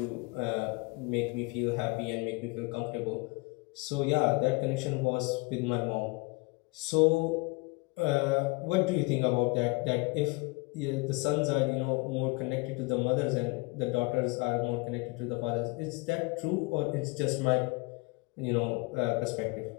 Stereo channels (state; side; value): quieter; right; 27.2 dB